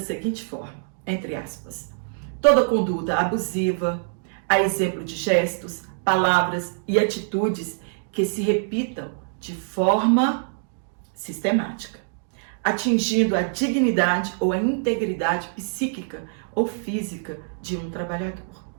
seguinte forma, entre aspas, toda conduta abusiva, a exemplo de gestos, palavras e atitudes que se repitam de forma sistemática, atingindo a dignidade ou a integridade psíquica ou física de um trabalhador.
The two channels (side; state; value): left; silent; digital silence